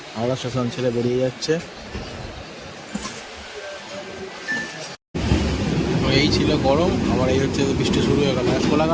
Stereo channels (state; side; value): identical; both; correlation 1.00